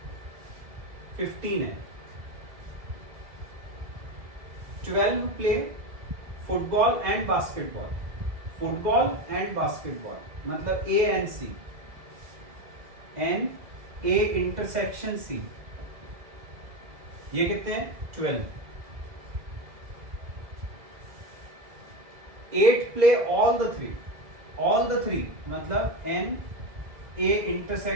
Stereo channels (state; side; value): late; left; 2.0 ms